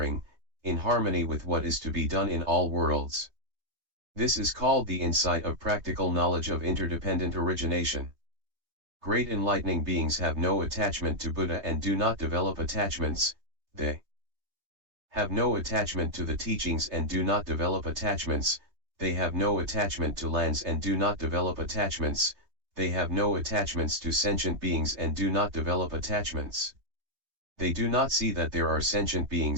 in harmony with what is to be done in all worlds. This is called the insight of practical knowledge of interdependent origination. Great enlightening beings have no attachment to Buddha and do not develop attachments, they have no attachment to the teachings and do not develop attachments, they have no attachment to lands and do not develop attachments, they have no attachments to sentient beings and do not develop attachments. They do not see that there are sentient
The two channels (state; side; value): late; left; 3.2 ms